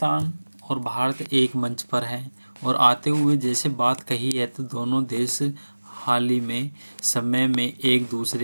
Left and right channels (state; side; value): inverted; both; correlation -1.00